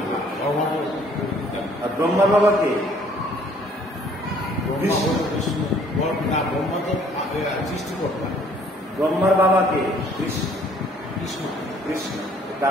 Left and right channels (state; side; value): normal; both; correlation 0.59